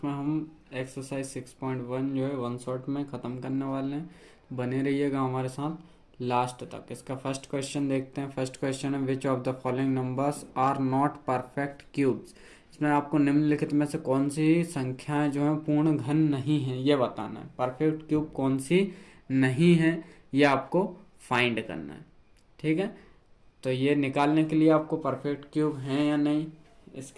हम एक्सरसाइज 6.1 जो है वन शॉट में ख़त्म करने वाले हैं। बने रहिएगा हमारे साथ लास्ट तक। इसका फर्स्ट क्वेश्चन देखते हैं। फर्स्ट क्वेश्चन है, which of the following numbers are not perfect cubes. इसमें आपको निम्नलिखित में से कौन सी संख्याएं जो है पूर्ण घन नहीं है ये बताना है। परफेक्ट क्यूब कौन सी नहीं है ये आपको फाइंड करना है, ठीक है। तो ये निकालने के लिए आपको परफेक्ट क्यूब है या नहीं,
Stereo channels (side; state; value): both; identical; correlation 1.00